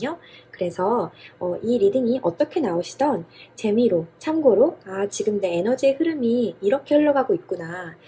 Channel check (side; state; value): both; identical; correlation 1.00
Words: 그래서 이 리딩이 어떻게 나오시던 재미로, 참고로, 지금 내 에너지의 흐름이 이렇게 흘러가고 있구나.